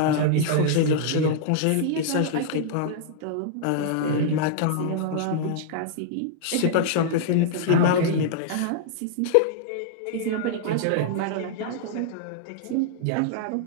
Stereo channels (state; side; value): different; both; correlation -0.01